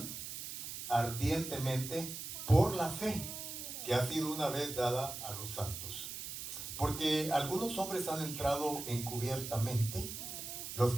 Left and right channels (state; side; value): noise; right; hiss, 7 dB below the sound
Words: ardientemente por la fe que ha sido una vez dada a los santos. Porque algunos hombres han entrado encubiertamente, los